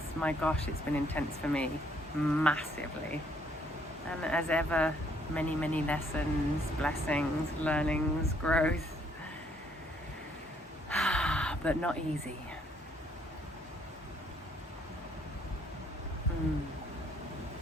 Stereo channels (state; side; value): normal; both; correlation 0.67